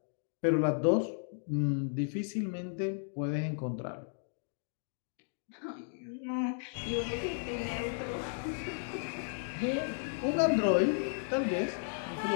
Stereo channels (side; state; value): right; silent; digital silence